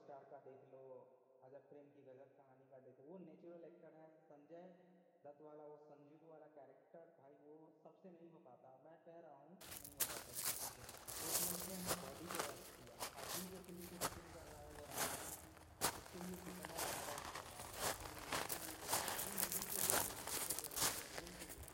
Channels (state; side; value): identical; both; correlation 1.00